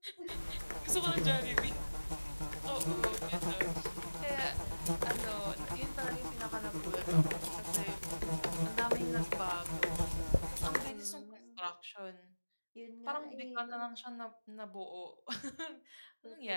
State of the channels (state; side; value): inverted; both; correlation -1.00